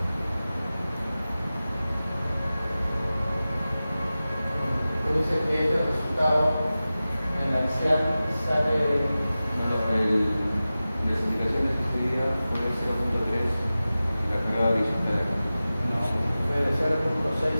Dice que este resultado en la axial sale. Las indicaciones que se dieron fue 0.3 la carga horizontal. No, fue de 0.6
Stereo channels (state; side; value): inverted; both; correlation -0.95